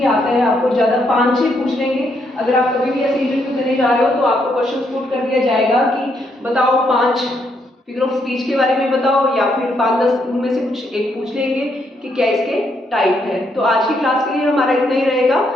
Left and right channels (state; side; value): normal; both; correlation 0.75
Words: आता है, आपको ज्यादा 5-6 पूछ लेंगे। अगर आप कभी भी ऐसे इंटरव्यू देने जा रहे हो तो आपको क्वेश्चन पुट कर दिया जाएगा कि बताओ 5 फिगर ऑफ स्पीच के बारे में बताओ, या फिर 5-10 उनमें से कुछ एक पूछ लेंगे कि क्या इसके टाइप है। तो आज की क्लास के लिए हमारा इतना ही रहेगा।